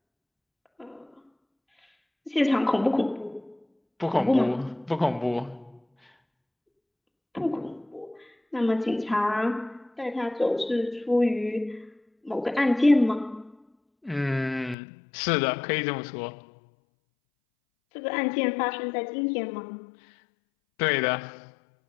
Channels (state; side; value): drops out; right; at 14.8 s